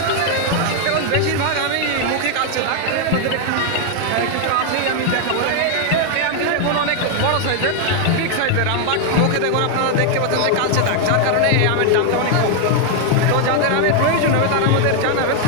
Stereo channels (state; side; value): different; both; correlation 0.00